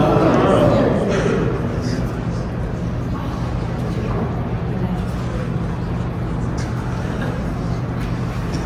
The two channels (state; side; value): identical; both; correlation 1.00